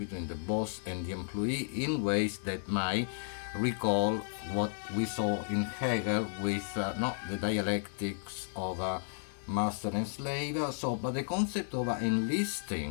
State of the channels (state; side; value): silent; right; digital silence